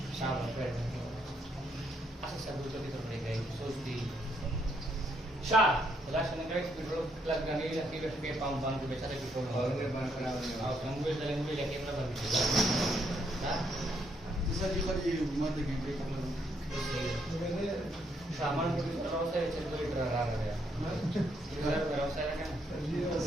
शाबाश असं सब तो कितना पड़ेगा सोचती शाह लास्ट में करेक्ट पेट्रोल प्लग करने के लिए के पंप बंद के बेचारे पेट्रोल और बंद कराने और लैंग्वेज लेके अपना बंद किया हां जैसा कि पर ये मत के ब्रेक कर सामान को व्यवसाय लीटर आ रहा है इधर व्यवसाय का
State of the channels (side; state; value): both; normal; correlation 0.74